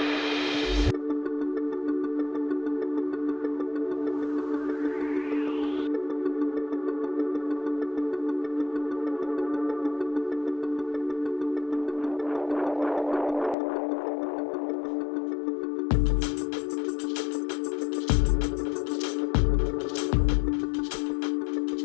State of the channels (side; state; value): right; drops out; at 13.6 s